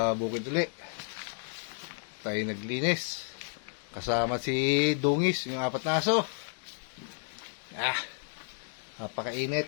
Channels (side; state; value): right; silent; digital silence